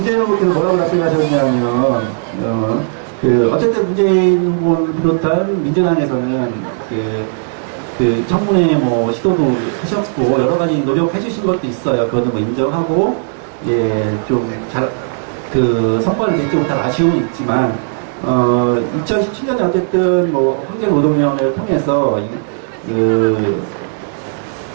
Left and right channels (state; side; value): silent; left; digital silence